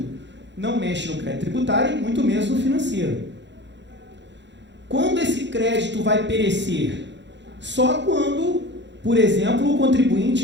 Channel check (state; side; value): late; left; 0.52 ms